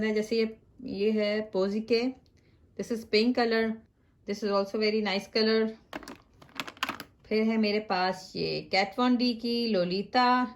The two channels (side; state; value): both; identical; correlation 1.00